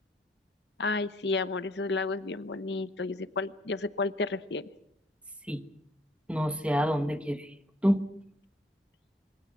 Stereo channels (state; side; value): normal; both; correlation 0.62